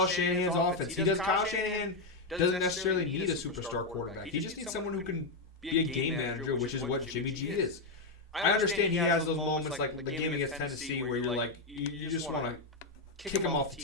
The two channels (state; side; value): quieter; right; 3.3 dB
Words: Shanahan's offense. Kyle Shanahan doesn't necessarily need a superstar quarterback. He just needs someone who can be a game manager, which is what Jimmy G is. I understand he has those moments like the game against Tennessee where you're like, you just want to kick him off the